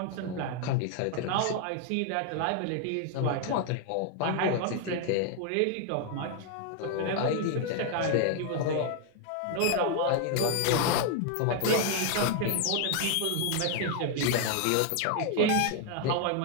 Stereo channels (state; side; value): different; both; correlation 0.00